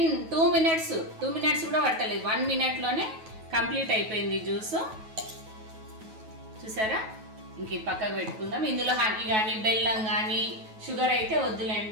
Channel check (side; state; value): left; late; 9.3 ms